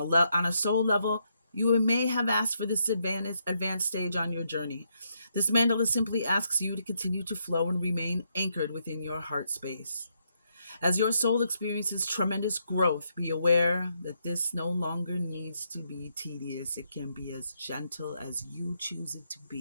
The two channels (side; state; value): both; inverted; correlation -0.78